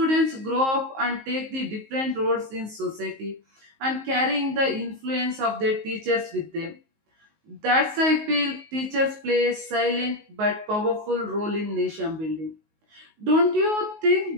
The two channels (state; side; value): late; left; 19 ms